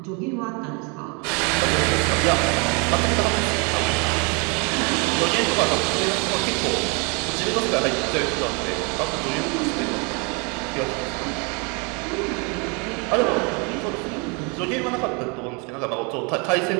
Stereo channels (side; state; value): left; quieter; 32.5 dB